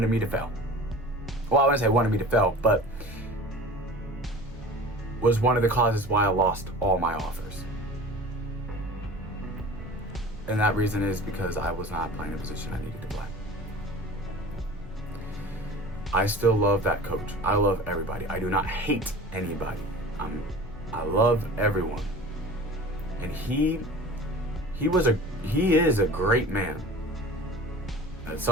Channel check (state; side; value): normal; both; correlation 0.40